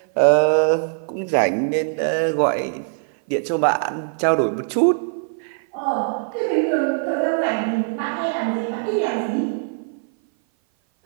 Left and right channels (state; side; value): silent; left; 58 dB below the other